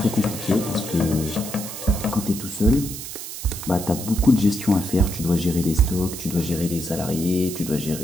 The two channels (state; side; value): noise; right; hiss, 9 dB below the sound